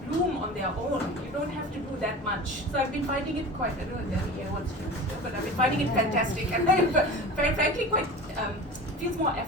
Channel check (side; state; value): both; normal; correlation 0.35